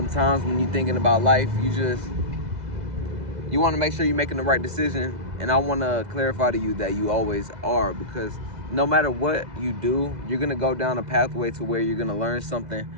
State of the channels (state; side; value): late; left; 2.0 ms